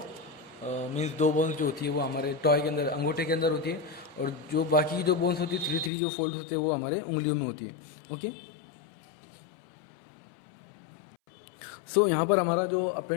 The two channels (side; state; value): right; drops out; at 5.9 s